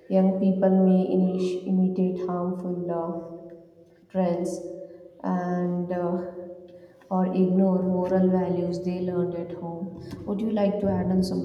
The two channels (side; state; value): both; identical; correlation 1.00